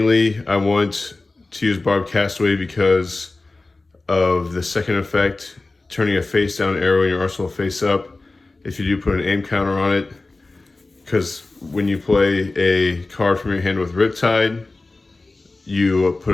I want to use Barbed Castaway because of the second effect, turning a face down arrow in your arsenal face up. If you do put an aim counter on it, because when you play a card from your hand with Riptide, you put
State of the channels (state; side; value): quieter; right; 3.3 dB